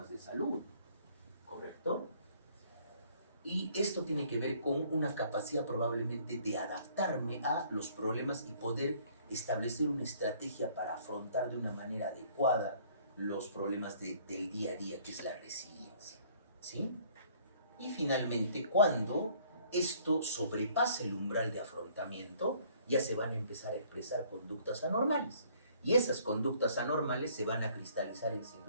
de salud, ¿correcto? Y esto tiene que ver con una capacidad probablemente de adaptarme a los problemas y poder establecer una estrategia para afrontar de una manera adecuada los problemas del día a día, que es la resiliencia, ¿sí? Y finalmente, cuando esto sobrepasa el umbral de afrontamiento, ya se van a empezar a expresar conductas anormales. Y esas conductas anormales se van a cristalizar en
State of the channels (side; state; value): both; inverted; correlation -0.59